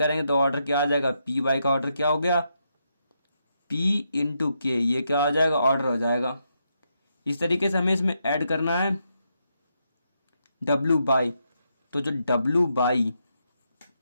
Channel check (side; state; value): both; inverted; correlation -0.81